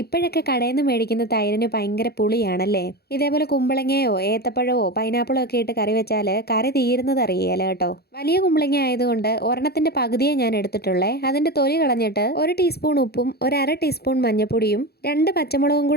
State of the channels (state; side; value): late; right; 0.46 ms